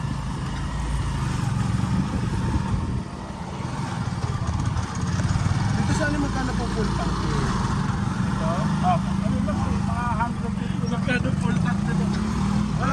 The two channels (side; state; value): both; identical; correlation 1.00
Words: Dito sana magkano po full tank? Ito? Ano lang, mga 150 lang. Magkano full tank nito?